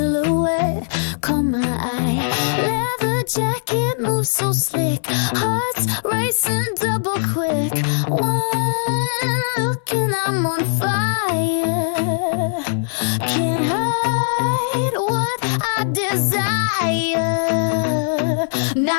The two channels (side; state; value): right; silent; 60 dB below the other